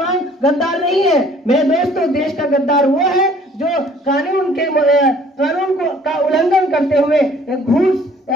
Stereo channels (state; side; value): normal; both; correlation 0.56